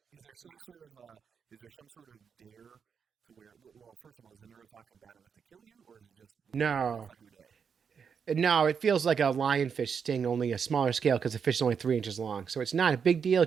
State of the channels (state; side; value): quieter; left; 6.6 dB